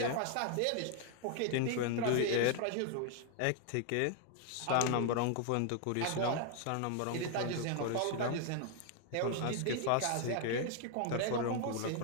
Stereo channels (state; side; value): different; both; correlation 0.00